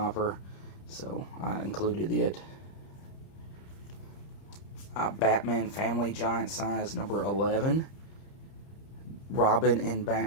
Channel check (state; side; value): late; right; 30 ms